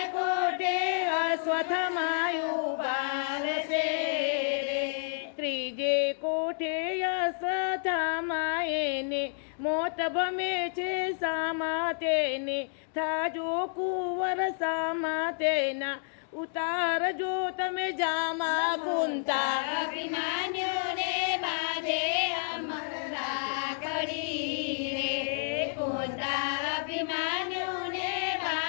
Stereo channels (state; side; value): silent; right; digital silence